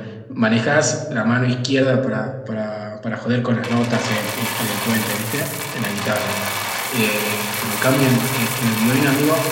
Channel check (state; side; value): identical; both; correlation 1.00